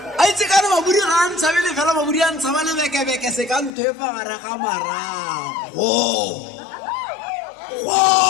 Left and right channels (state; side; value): drops out; right; at 3.7 s